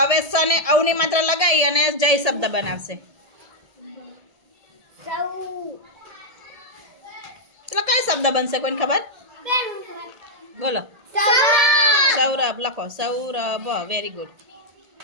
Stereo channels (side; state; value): left; late; 1.8 ms